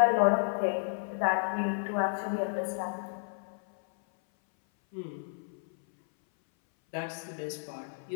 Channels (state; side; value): silent; right; 57 dB below the other